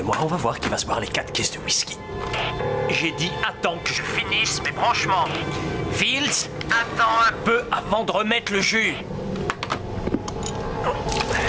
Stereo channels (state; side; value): identical; both; correlation 1.00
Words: moi, on va voir qui va se boire les 4 caisses de whisky. J'ai dit attends que je finisse mes branchements. Fields, attends un peu avant de remettre le jus.